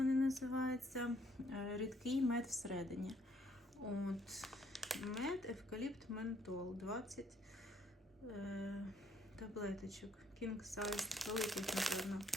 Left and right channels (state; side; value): normal; both; correlation 0.67